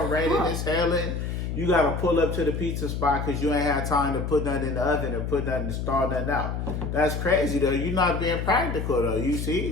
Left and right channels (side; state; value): left; noise; hum, 3 dB below the sound